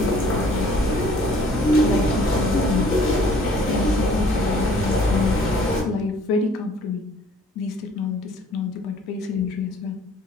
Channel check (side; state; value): both; normal; correlation 0.57